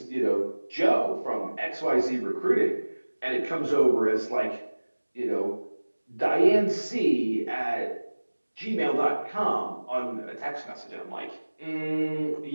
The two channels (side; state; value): both; inverted; correlation -1.00